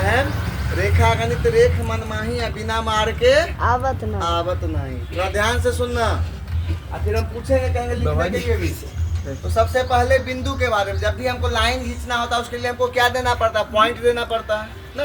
रेखा गणित रेख मनमाही है, बिना मार के आवत नहीं। थोड़ा ध्यान से सुनना, फिर हम पूछेंगे, कहेंगे लिखने के लिए भी। तो सबसे पहले बिंदु के बारे में, जब भी हमको लाइन खींचना होता है उसके लिए हमको क्या देना पड़ता है? पॉइंट देना पड़ता है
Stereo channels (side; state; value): both; identical; correlation 1.00